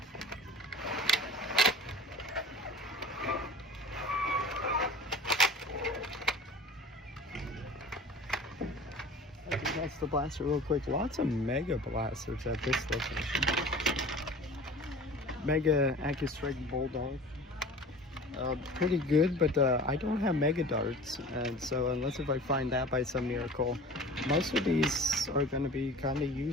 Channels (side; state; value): both; normal; correlation 0.40